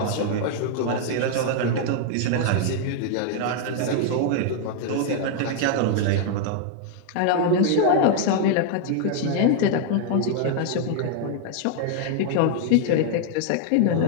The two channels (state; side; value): different; both; correlation 0.00